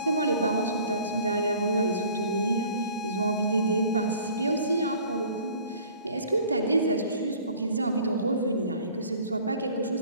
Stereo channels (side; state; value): both; inverted; correlation -0.50